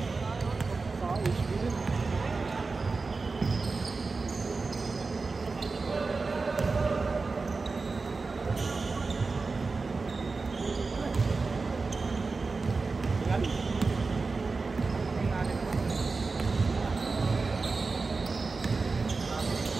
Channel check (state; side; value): quieter; left; 4.1 dB